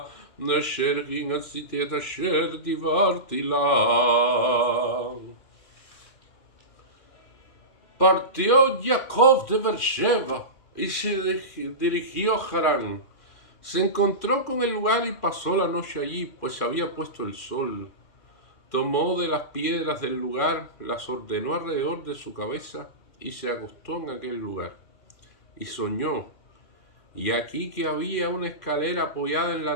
אשר עשיתי את אשר דיברתי לה. Partió Jacob de Beersheba y se dirigió a Harán. Se encontró con el lugar y pasó la noche allí, pues se había puesto el sol. Tomó de las piedras del lugar, las ordenó alrededor de su cabeza y se acostó en aquel lugar. Y soñó, y aquí que había una escalera apoyada en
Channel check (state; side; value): late; right; 2.4 ms